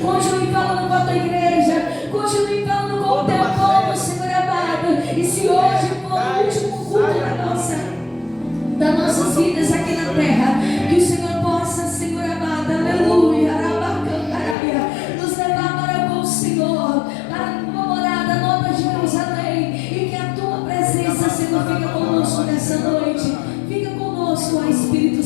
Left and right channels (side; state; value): right; drops out; at 14.6 s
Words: Continue falando com a Tua igreja, continue falando com o Teu povo, Senhor amado. E se hoje for o último culto das nossas vidas aqui na terra, que o Senhor possa, Senhor amado, aleluia, nos levar para com o Senhor, para a Tua morada, Nova Jerusalém, e que a Tua presença, Senhor, fica conosco nessa noite. Fica conosco, ó Espírito